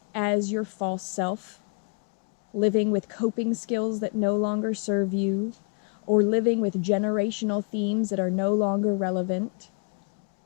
as your false self, living with coping skills that no longer serve you, or living with generational themes that are no longer relevant.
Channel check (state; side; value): quieter; right; 39.4 dB